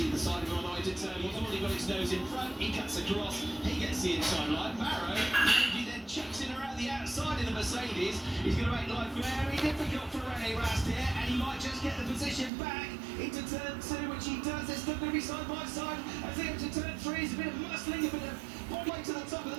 side of him on the way to turn. He's already got his nose in front. He cuts across. He gets the inside line. Maro, he then chucks it around the outside of the Mercedes. He's going to make life very difficult for Rene Rast here, and he might just get the position back into turn 2, which he does. They're still going to be side by side. As they enter turn 3, it's a bit of muscling, a bit of one way to the top of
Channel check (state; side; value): drops out; left; at 12.5 s